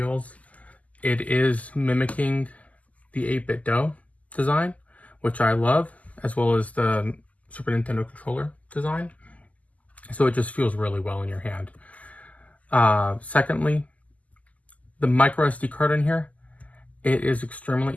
It is mimicking the 8-bit DOE design, which I love, as well as the Super Nintendo controller design. So it just feels really well in your hand. Secondly, the micro SD card in here, it is extremely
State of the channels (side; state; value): right; late; 0.073 ms